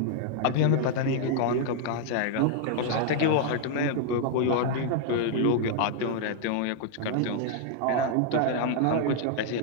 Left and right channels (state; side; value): different; both; correlation 0.00